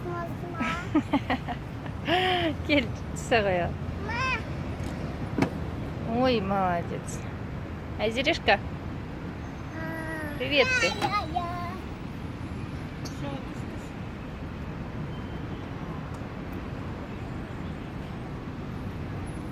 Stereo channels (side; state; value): both; identical; correlation 1.00